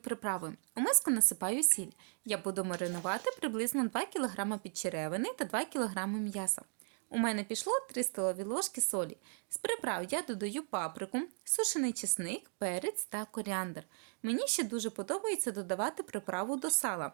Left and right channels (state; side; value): silent; left; 53 dB below the other